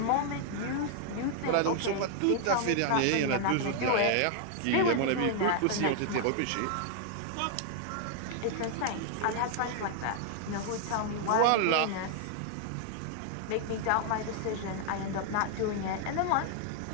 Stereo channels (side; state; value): both; different; correlation 0.00